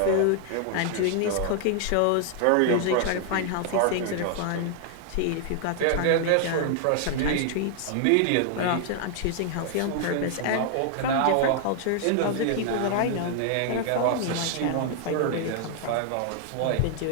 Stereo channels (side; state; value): both; different; correlation 0.00